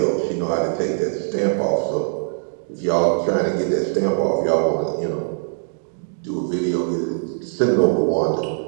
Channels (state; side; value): silent; left; digital silence